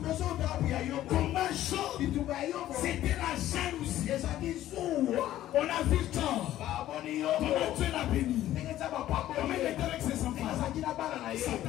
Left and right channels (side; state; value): right; quieter; 13.4 dB